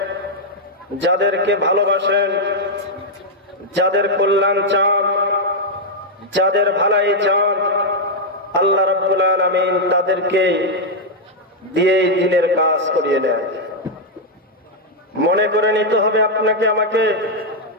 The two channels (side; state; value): both; normal; correlation -0.02